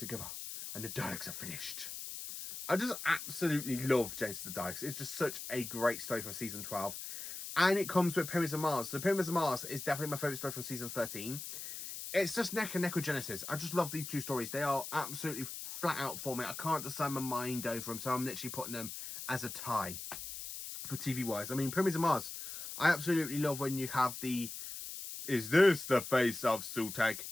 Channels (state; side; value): noise; left; hiss, 8 dB below the sound